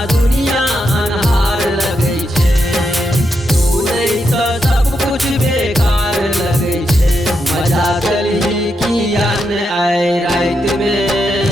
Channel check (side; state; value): both; normal; correlation 0.83